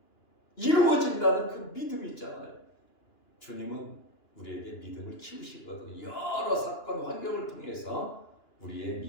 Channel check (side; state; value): right; late; 2.9 ms